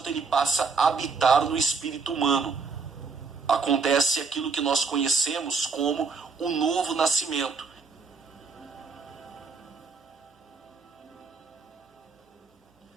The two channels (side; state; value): left; quieter; 4.9 dB